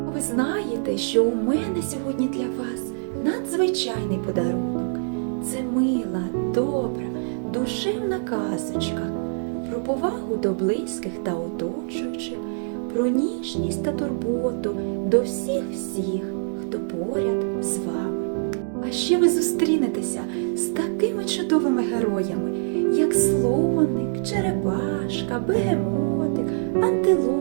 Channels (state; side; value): silent; left; digital silence